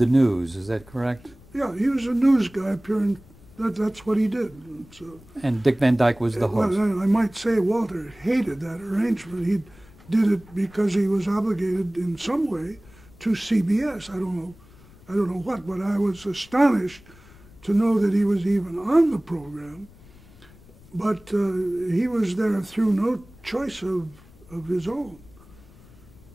news. Is that correct? Yeah, he was a news guy appearing. That's what he did. So, and Dick Van Dyke was the host. Well, I might say Walter hated that arrangement. He did it because he was obligated in some way to CBS. I don't know what, but I was astonished to know that he was even on the program. But he was there through no choice of his own.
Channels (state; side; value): noise; left; rumble, 24 dB below the sound